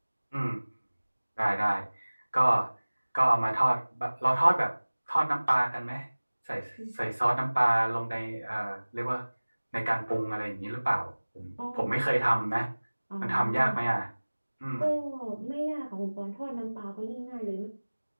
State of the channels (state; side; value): inverted; both; correlation -1.00